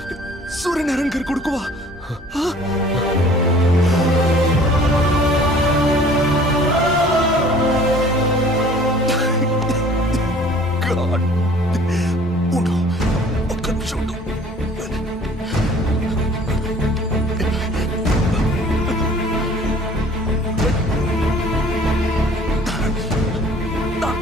సూర్యనారాయణ గారి కొడుకువా? God. ఉండు, ఒక్క నిమిషం ఉండు.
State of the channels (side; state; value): both; normal; correlation 0.52